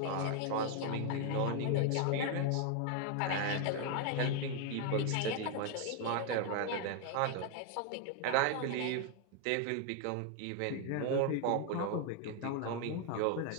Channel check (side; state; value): both; different; correlation 0.01